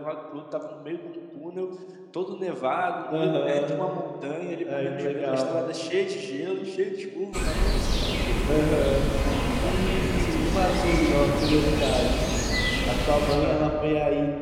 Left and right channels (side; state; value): both; identical; correlation 1.00